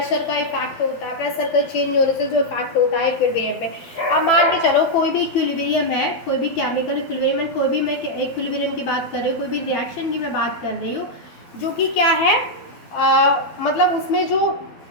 का इफेक्ट होता है, प्रेशर का चेंज होने से जो इफेक्ट होता है इक्विलिब्रियम में। अब मान के चलो कोई भी इक्विलिब्रियम है, कोई भी केमिकल इक्विलिब्रियम, कोई भी मैं इक्विलिब्रियम की बात कर रही हूँ, कोई भी रिएक्शन की मैं बात कर रही हूँ, जो कि क्या है, मतलब उसमें जो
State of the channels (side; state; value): right; late; 12 ms